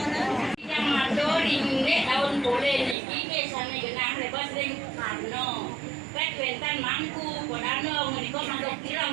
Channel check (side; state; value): left; drops out; at 3.0 s